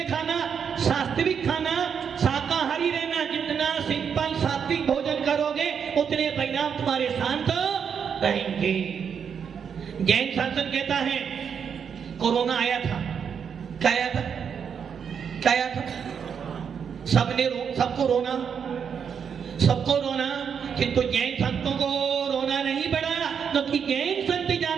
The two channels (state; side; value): quieter; left; 7.2 dB